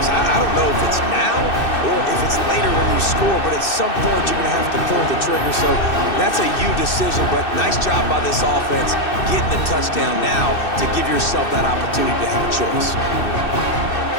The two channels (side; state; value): right; late; 2.6 ms